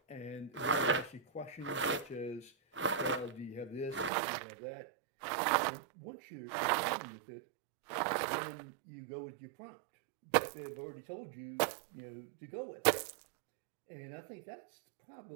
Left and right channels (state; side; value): drops out; left; at 4.1 s